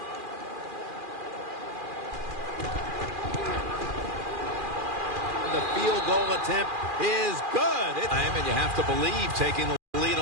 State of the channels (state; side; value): late; left; 2.4 ms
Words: The field goal attempt is good. And you have to believe taking the lead